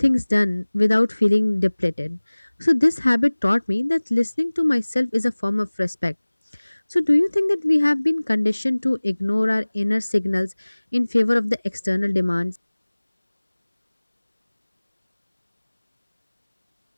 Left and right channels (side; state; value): both; inverted; correlation -1.00